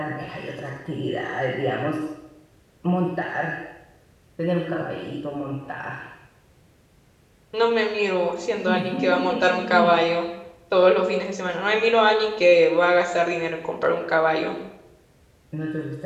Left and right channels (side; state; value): both; identical; correlation 1.00